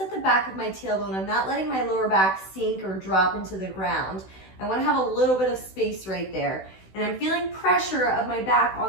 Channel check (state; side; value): late; right; 16 ms